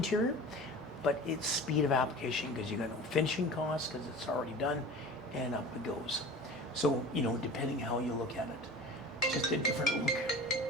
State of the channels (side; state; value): both; normal; correlation 0.37